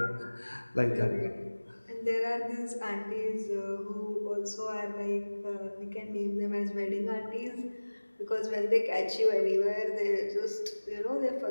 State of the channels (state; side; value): inverted; both; correlation -1.00